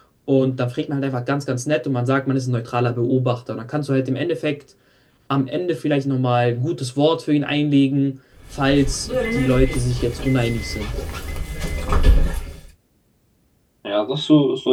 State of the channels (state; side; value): identical; both; correlation 1.00